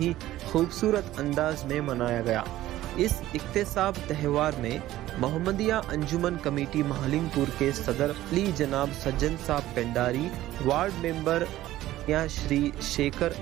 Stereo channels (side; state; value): left; quieter; 14.9 dB